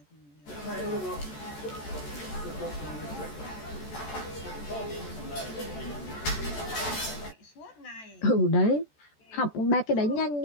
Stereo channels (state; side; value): late; right; 14 ms